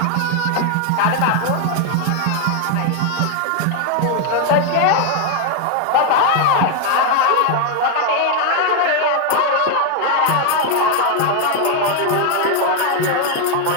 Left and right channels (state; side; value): different; both; correlation 0.01